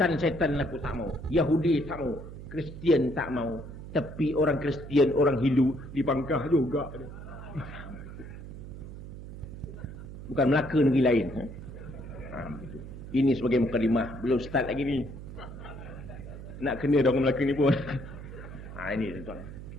aku tak mau. Yahudi tak mau. Kristian tak mau. Tapi orang Kristian, orang Hindu dipangkah juga. Bukan Melaka negeri lain. Ini sebagai mukadimah. Belum start lagi ni. Nak kena orang Melaka ni pun. Ini tuan.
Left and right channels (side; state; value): right; noise; hum, 12 dB below the sound